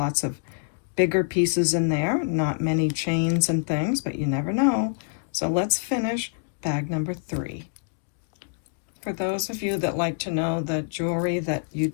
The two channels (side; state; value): right; silent; digital silence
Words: of bigger pieces in there, not many chains and things, but you never know. So let's finish bag number 3. For those of you that like to know the jewelry that